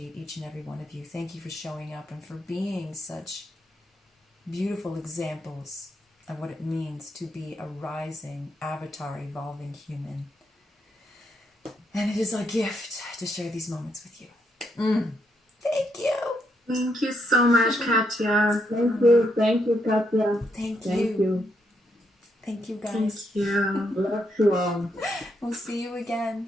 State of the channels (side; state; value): both; normal; correlation 0.78